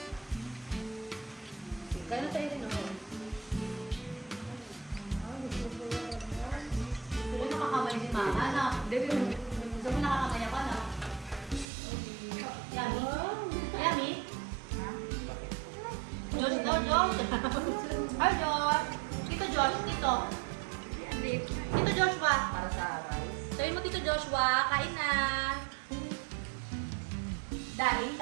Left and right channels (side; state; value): left; drops out; at 11.7 s